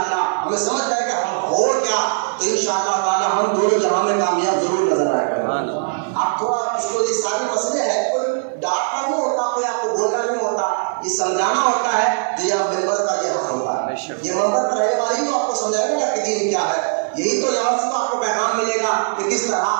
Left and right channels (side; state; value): left; silent; 66 dB below the other